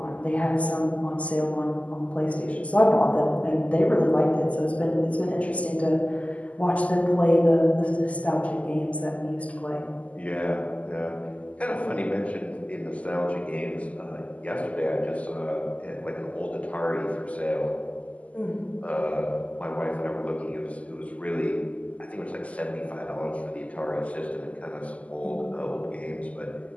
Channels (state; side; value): late; right; 0.069 ms